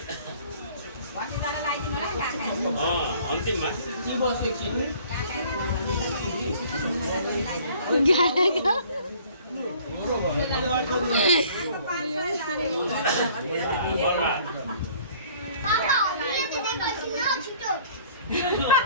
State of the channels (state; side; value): inverted; both; correlation -0.54